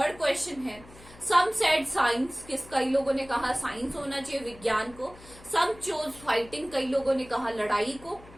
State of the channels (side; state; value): left; noise; hum, 21 dB below the sound